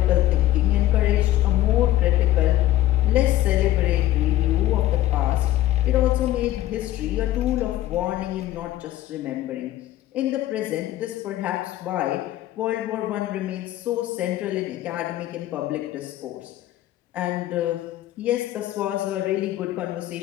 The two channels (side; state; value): right; quieter; 14.4 dB